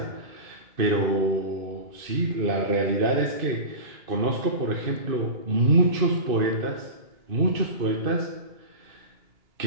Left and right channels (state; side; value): late; left; 2.6 ms